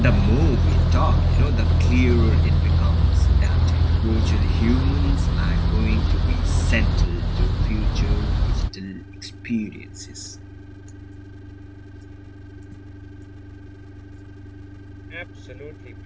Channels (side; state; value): both; identical; correlation 1.00